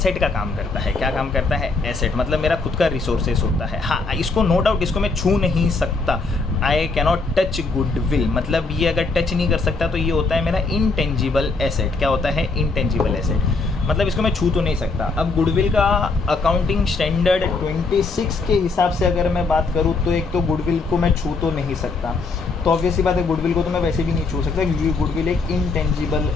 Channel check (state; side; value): quieter; right; 3.9 dB